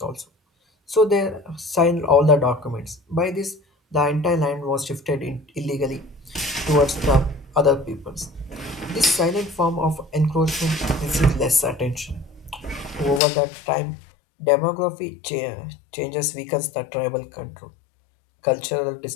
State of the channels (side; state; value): right; drops out; at 13.2 s